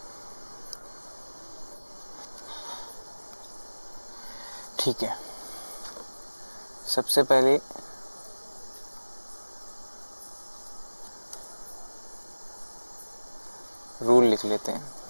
ठीक है, सबसे पहले रूल लिख लेते हैं।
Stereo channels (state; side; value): inverted; both; correlation -1.00